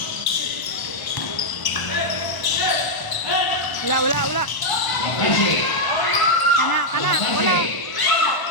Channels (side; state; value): right; late; 1.0 ms